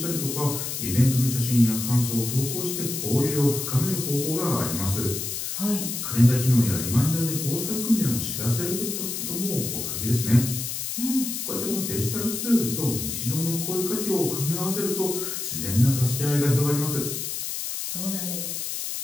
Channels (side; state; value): left; noise; hiss, 4 dB below the sound